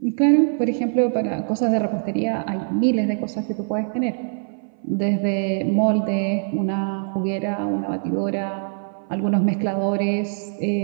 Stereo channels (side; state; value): left; silent; 61 dB below the other